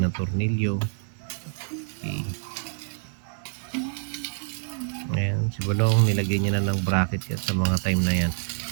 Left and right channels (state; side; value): silent; left; digital silence